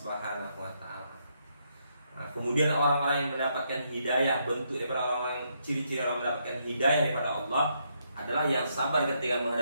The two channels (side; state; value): both; inverted; correlation -0.76